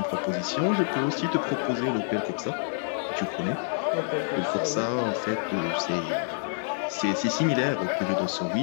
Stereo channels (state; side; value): silent; right; 60 dB below the other